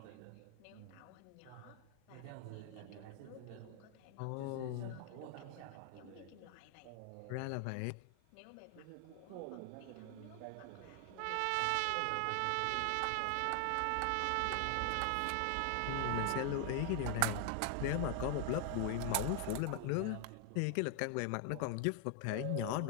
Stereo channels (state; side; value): different; both; correlation 0.00